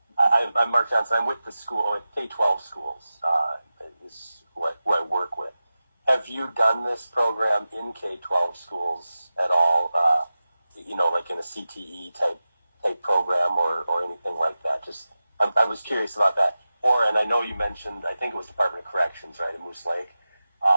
Mark Johnson. I'm with the school, with K-12 schools, is who I work with. Have you done this program in K-12 schools at all, like in a CTE type program or anything like that? Just, I was curious about that. And I know you mentioned, I think it was Department of Corrections, right, in Moose Lake.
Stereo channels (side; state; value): both; inverted; correlation -0.95